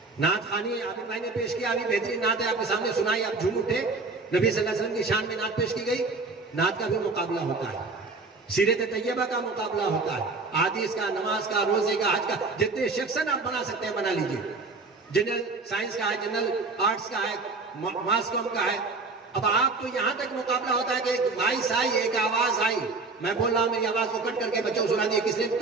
नात खानी आबिद भाई ने पेश किया, अभी बेहतरीन नात है आपके सामने सुनाई, आप झूम उठे। नबी सल्लल्लाहु अलैहि वसल्लम की शान में नात पेश की गई, नात का भी मुकाबला होता है, सीरत तैयबा का मुकाबला होता है, हादीस का, नमाज का, रोजे का, हज का, जितने सेक्शन आप बना सकते हैं बना लीजिए। जनरल साइंस का है, जनरल आर्ट्स का है, मास कॉम का है। अब आप तो यहां तक मुकाबला होता है कि एक वॉइस आई, एक आवाज आई, मैं बोल रहा हूं, मेरी आवाज को कट करके बच्चों को सुना दिए, किसने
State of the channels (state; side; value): quieter; left; 3.8 dB